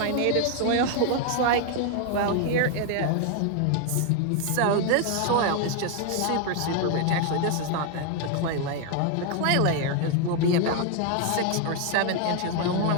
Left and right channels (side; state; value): both; different; correlation 0.01